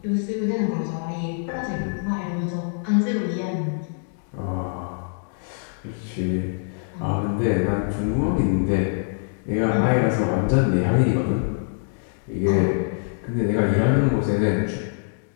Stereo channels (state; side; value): silent; right; digital silence